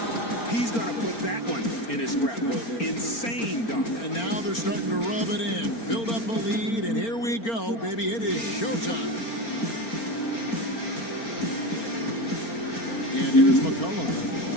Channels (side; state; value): right; late; 4.4 ms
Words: He's going to put that one in his scrapbook. Insane dunk. And now they're starting to rub it in. Build up a lead, and here we go, baby. It is showtime. And here's